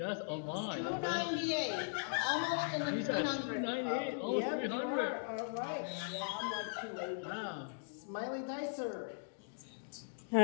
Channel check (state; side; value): silent; right; digital silence